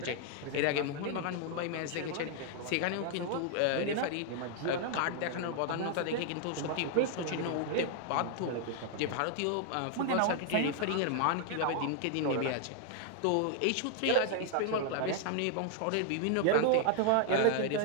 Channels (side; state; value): both; different; correlation 0.00